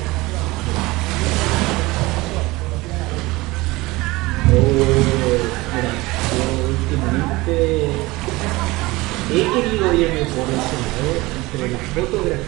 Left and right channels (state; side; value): quieter; left; 21.2 dB